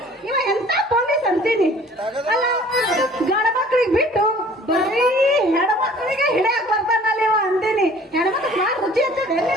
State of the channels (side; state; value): both; normal; correlation 0.51